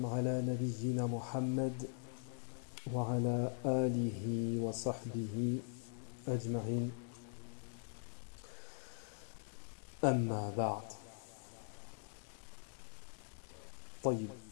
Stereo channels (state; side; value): silent; right; digital silence